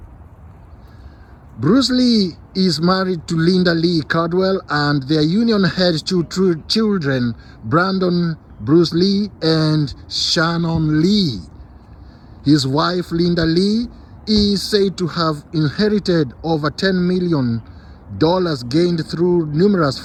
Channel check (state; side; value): identical; both; correlation 1.00